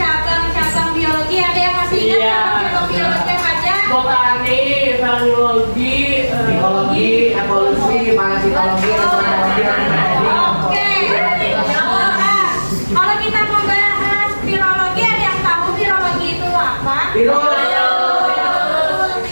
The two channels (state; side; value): inverted; both; correlation -1.00